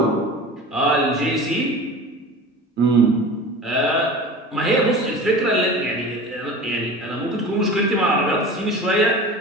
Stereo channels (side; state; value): both; normal; correlation 0.36